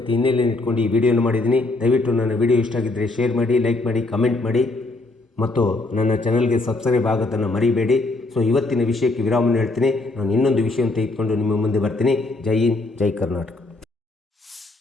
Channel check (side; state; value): right; quieter; 3.1 dB